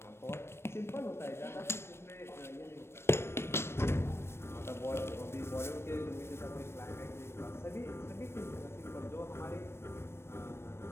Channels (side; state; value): right; late; 0.12 ms